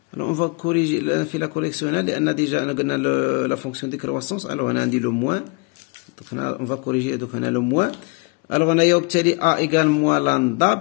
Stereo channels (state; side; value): quieter; right; 29.9 dB